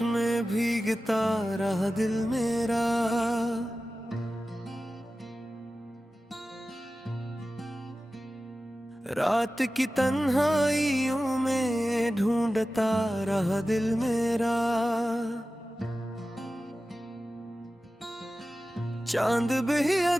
में भीगता रहा दिल मेरा। रात की तन्हाइयों में ढूंढता रहा दिल मेरा। चांद भी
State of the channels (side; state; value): both; normal; correlation 0.95